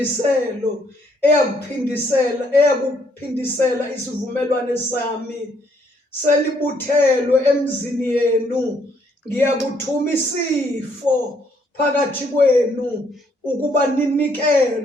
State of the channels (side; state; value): both; normal; correlation 0.69